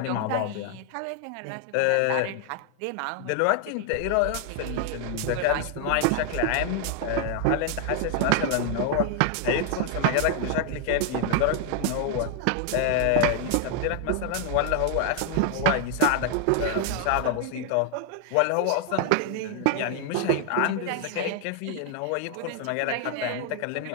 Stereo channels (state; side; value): different; both; correlation 0.00